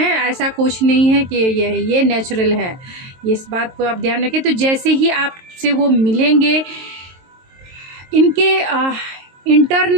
ऐसा कुछ नहीं है कि ये नेचुरल है, इस बात को आप ध्यान रखें। तो जैसे ही आपसे वो मिलेंगे, इनके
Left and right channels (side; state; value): left; late; 23 ms